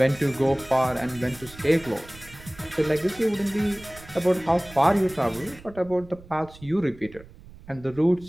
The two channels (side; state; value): right; noise; rumble, 20 dB below the sound